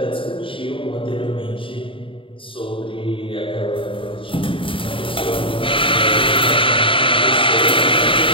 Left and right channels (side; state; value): right; late; 0.25 ms